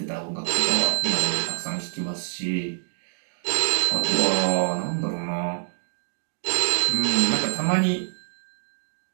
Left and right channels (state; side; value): silent; left; digital silence